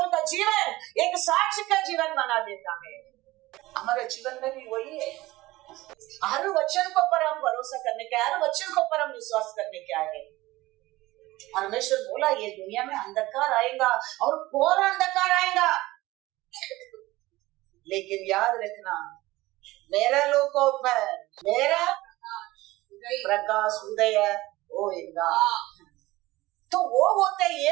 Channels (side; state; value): left; quieter; 18.6 dB